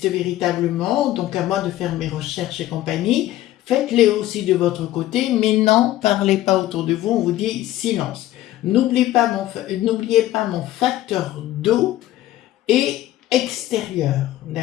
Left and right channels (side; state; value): right; quieter; 14.7 dB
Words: véritablement, donc à moi de faire mes recherches et compagnie. Faites-les aussi de votre côté, mais non, parlez pas autour de vous, on vous dit silence. N'oubliez pas mon facteur d'eau et extérieure,